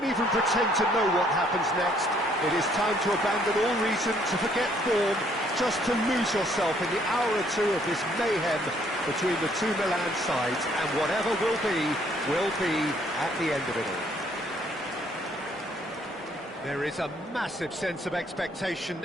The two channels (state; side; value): normal; both; correlation 0.65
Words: even pretend to know what happens next. It is time to abandon all reason, to forget form, just to lose yourself in the hour or two of this mayhem between the two Milan sides, and whatever will be at the end of it all. There is a massive sense of expectation